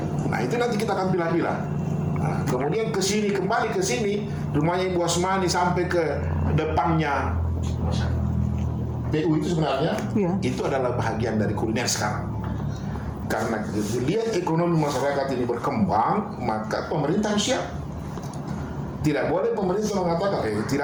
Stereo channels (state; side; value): identical; both; correlation 1.00